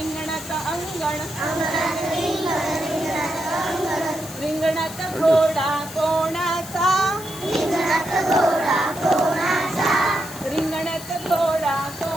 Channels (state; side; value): noise; left; hiss, 14 dB below the sound